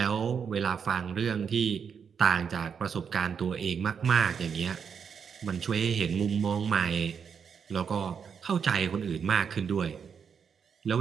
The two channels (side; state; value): left; quieter; 6.8 dB